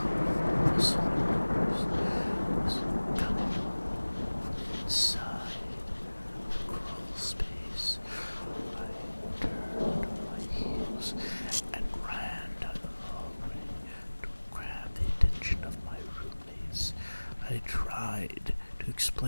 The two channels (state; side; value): inverted; both; correlation -1.00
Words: rustling noise was coming from inside the Crawlspace. I turned on my heels and ran down the hallway to grab the attention of my roommates. I tried to